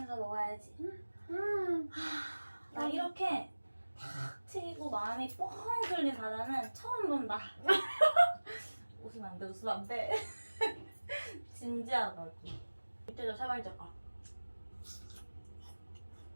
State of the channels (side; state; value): both; inverted; correlation -1.00